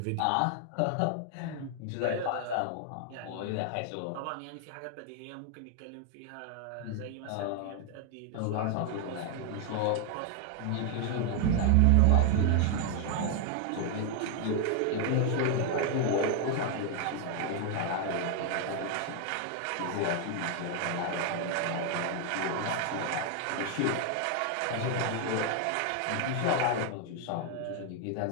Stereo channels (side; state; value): both; different; correlation 0.00